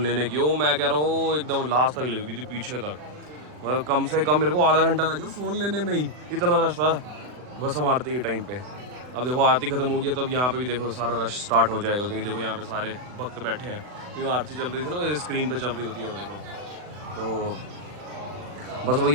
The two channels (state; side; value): late; left; 40 ms